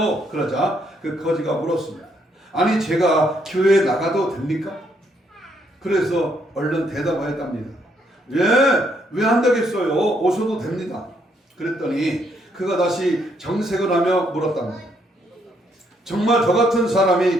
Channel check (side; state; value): both; normal; correlation 0.72